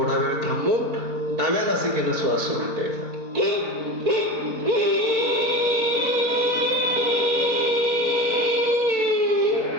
वेळ थांबून डाव्या नासिकेनं श्वास सोडून द्यायचा.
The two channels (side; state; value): left; late; 4.1 ms